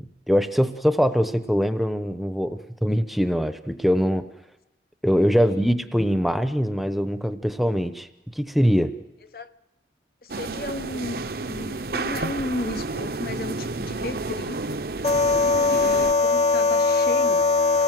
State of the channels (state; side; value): normal; both; correlation 0.61